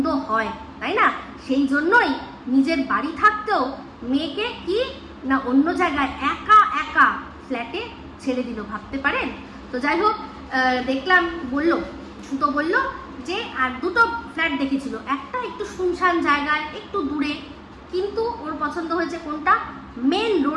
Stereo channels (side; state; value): both; identical; correlation 1.00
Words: হয়, তাই না? সেই জন্যই নিজের বাড়ি থাকতেও মেয়েকে কি না অন্য জায়গায় একা একা ফ্ল্যাটে ছেড়ে দিল, ভাবতে পারেন? তো যাই হোক, দেখলাম সুতো বলল যে আর দুটো ফ্ল্যাট দেখেছিল, একটা একটু শুনশান জায়গায় একটু দূরে, কিন্তু ওর পছন্দ হয়েছে কোনটা, মেন